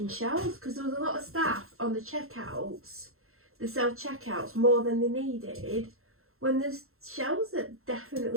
shelves, because there was a lot of staff on the checkouts, the self-checkouts, more than they needed, when there's shelves that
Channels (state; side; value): late; left; 0.62 ms